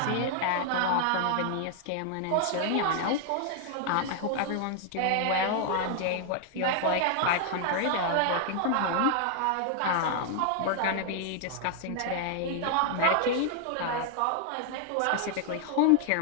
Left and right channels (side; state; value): both; different; correlation 0.00